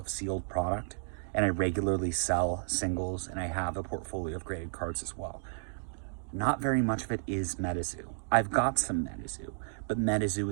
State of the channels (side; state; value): left; silent; digital silence